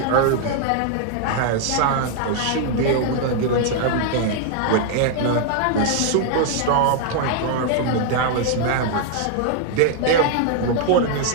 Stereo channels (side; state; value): both; different; correlation 0.00